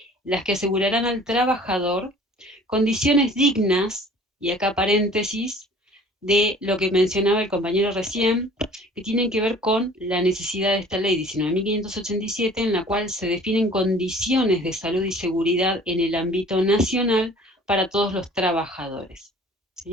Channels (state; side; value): normal; both; correlation 0.50